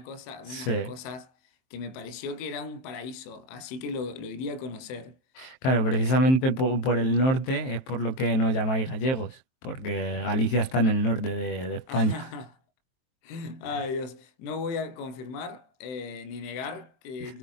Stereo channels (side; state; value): right; late; 23 ms